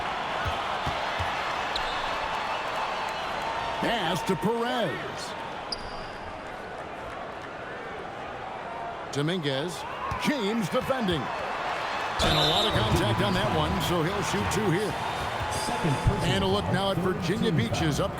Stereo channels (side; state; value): both; identical; correlation 1.00